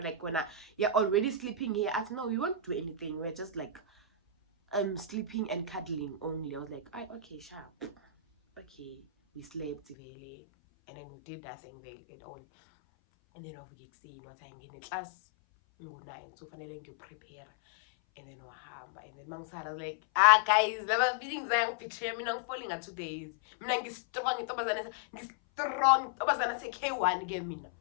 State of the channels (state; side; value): drops out; right; at 10.0 s